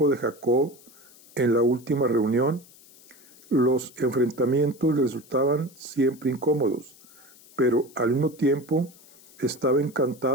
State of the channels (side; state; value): left; noise; hiss, 24 dB below the sound